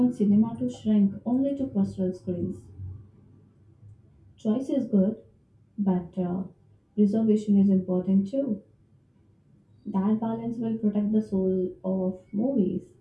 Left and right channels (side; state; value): both; identical; correlation 1.00